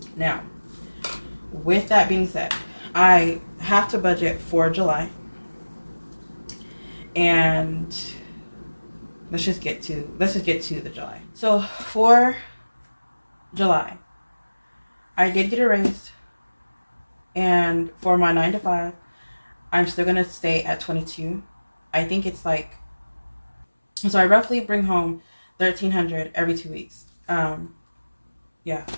Now, with that being said, I have to budget for July, and let's just get to the July. So for July, I did get a raise, and for my 9 to 5, I'm still gonna stay at 22. I think it's like, so I roughly bring home $1,300 every 2 weeks. Yeah,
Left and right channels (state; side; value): inverted; both; correlation -1.00